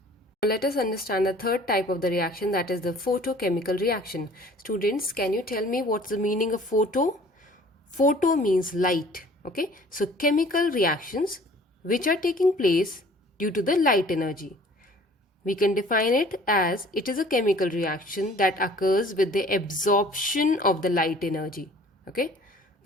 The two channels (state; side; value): normal; both; correlation 0.51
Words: Let us understand the third type of the reaction, that is the photochemical reaction. Students, can you tell me what's the meaning of photo? Photo means light. Okay, so chemical reactions which are taking place due to the light energy. We can define it as it is a chemical reaction that occurs with the absorption of the light energy. Okay,